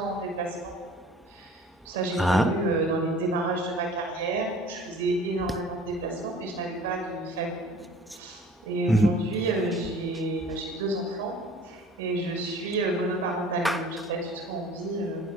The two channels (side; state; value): both; normal; correlation 0.48